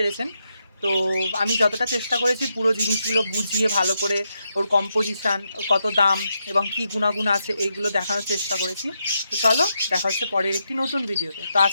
তো আমি যতটা চেষ্টা করেছি পুরো জিনিসগুলো বুঝিয়ে ভালো করে, ওর কম্পোজিশান, কত দাম এবং কী গুণাগুণ আছে, এইগুলো দেখানোর চেষ্টা করেছি। তো চলো দেখা হচ্ছে পরের একটি নতুন ভিডিওতে। তো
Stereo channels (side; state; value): both; inverted; correlation -0.83